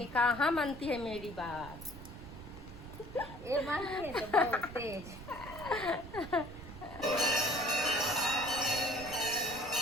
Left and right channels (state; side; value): noise; right; rumble, 13 dB below the sound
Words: कहाँ मानती है मेरी बात। ये मानिए तो बहुत तेज।